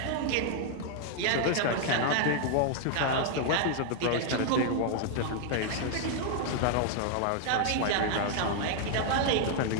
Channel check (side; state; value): both; different; correlation 0.00